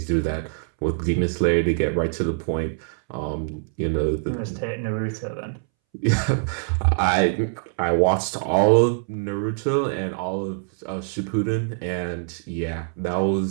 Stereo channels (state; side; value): silent; left; 63 dB below the other